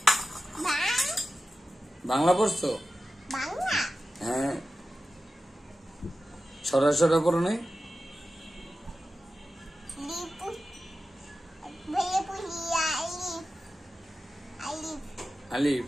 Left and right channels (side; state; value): both; normal; correlation 0.93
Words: বাংলা পড়ছো? হ্যাঁ সরা সরা পড়ো নাই? আলিফ